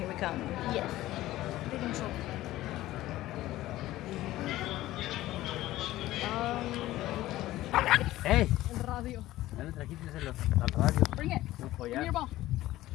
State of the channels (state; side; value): quieter; right; 15.8 dB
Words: we come. Yes. Big intro. ¡Ey! El radio. Ya le trajiste al radio. Bring it. Un Give me collar. your ball.